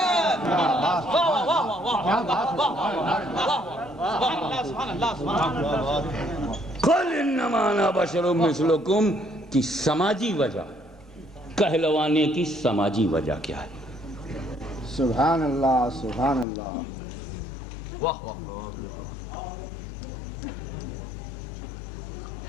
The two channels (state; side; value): drops out; right; at 16.4 s